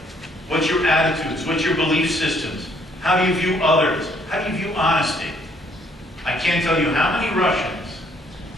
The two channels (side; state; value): both; normal; correlation 0.65